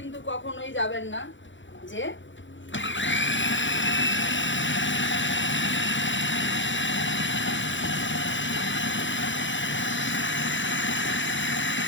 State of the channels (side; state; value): right; late; 0.55 ms